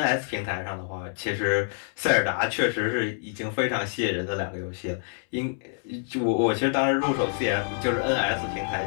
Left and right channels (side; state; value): right; silent; 60 dB below the other